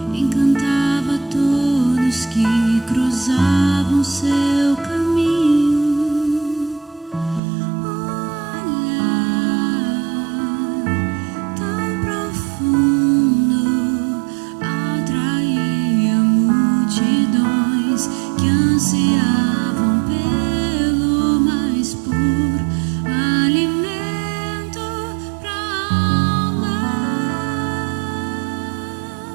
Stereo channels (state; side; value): drops out; left; at 7.4 s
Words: encantava todos que cruzavam seu caminho. Olhar tão profundo atraía multidões que ansiavam pelo